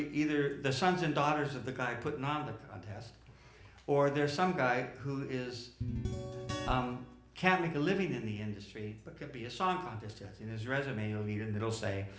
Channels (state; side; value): identical; both; correlation 1.00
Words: the sons and daughters of the guy putting on the contest, or there's some guy who is can't make a living in the industry, but could be a song contest judge. In his resume, you'll read it and it'll say,